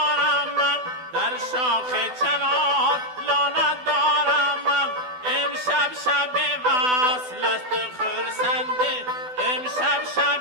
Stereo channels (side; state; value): left; late; 12 ms